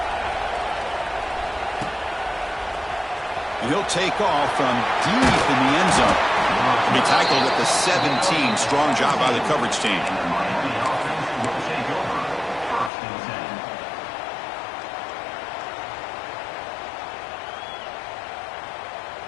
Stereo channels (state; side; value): drops out; right; at 12.9 s